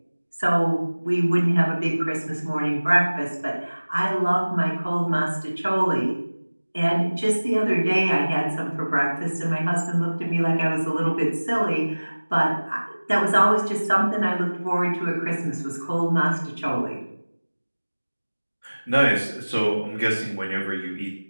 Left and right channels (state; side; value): inverted; both; correlation -1.00